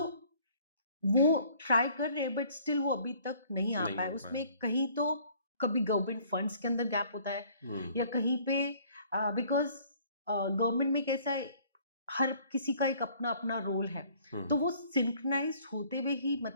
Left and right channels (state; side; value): inverted; both; correlation -0.57